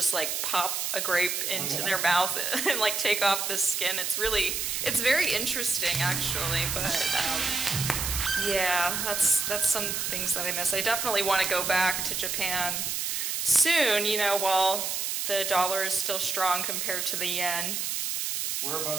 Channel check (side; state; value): right; noise; hiss, 1 dB below the sound